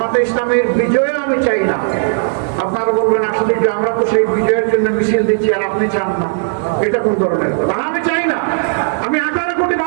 ইসলামের বিজয় আমি চাই না। আপনারা বলবেন, আসলে যে আমরা তো সেই বিজয়ের জন্য মিছিল দিচ্ছি আর আপনি চান না, এটা কোন ধরনের কথা? আমি চাই না, আমি 18 কোটি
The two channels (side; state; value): left; silent; digital silence